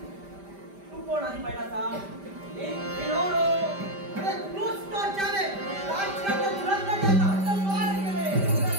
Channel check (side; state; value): left; late; 5.1 ms